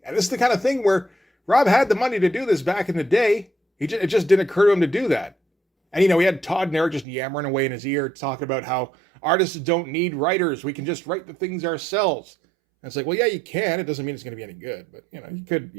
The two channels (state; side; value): drops out; left; at 7.1 s